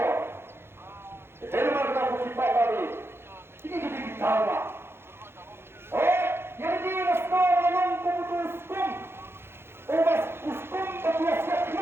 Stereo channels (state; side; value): late; left; 0.11 ms